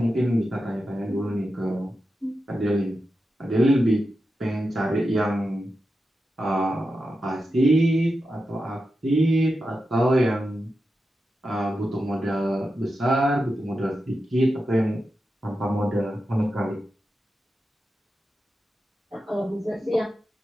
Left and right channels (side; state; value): both; normal; correlation 0.90